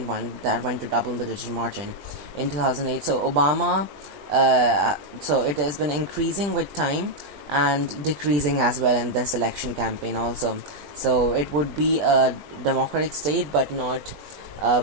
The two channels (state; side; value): late; left; 20 ms